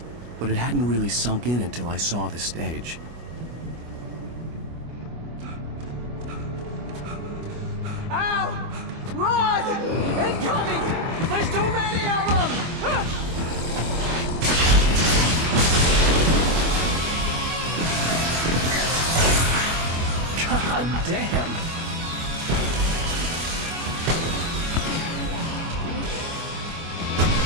but it hadn't really sunk in until I saw the stage. Ow! Run! Incoming! There's too many of them! God damn!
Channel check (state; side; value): late; left; 25 ms